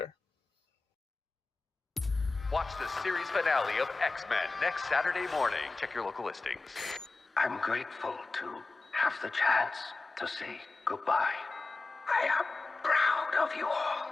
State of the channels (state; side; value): quieter; right; 3.6 dB